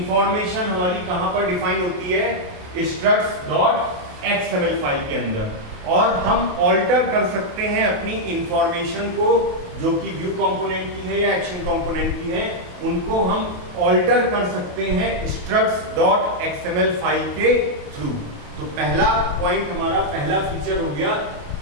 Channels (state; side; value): late; left; 28 ms